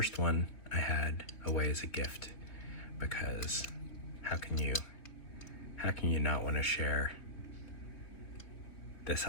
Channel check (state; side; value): late; right; 3.1 ms